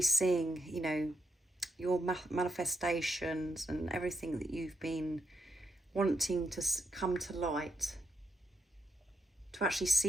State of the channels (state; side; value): normal; both; correlation 0.79